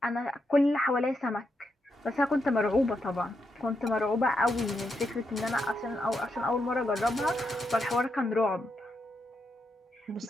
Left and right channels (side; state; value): both; normal; correlation 0.83